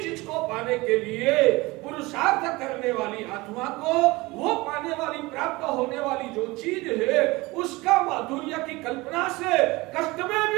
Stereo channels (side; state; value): left; quieter; 22.1 dB